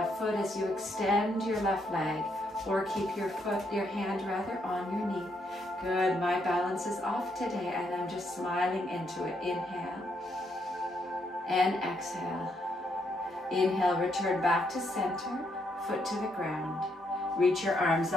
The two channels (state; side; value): normal; both; correlation 0.76